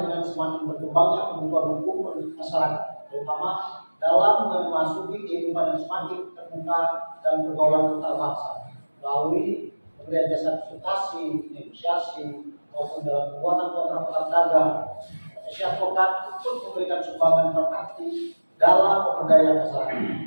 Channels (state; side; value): inverted; both; correlation -1.00